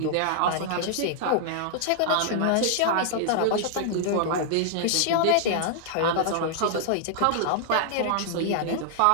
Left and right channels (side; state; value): both; different; correlation -0.01